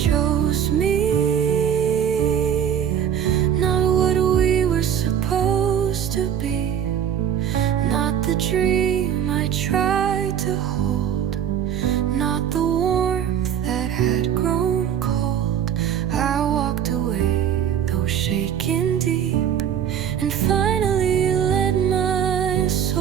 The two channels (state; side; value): quieter; left; 9.1 dB